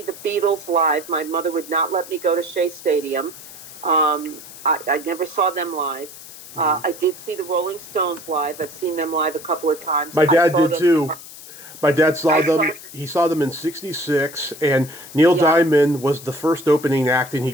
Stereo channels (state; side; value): noise; left; hiss, 16 dB below the sound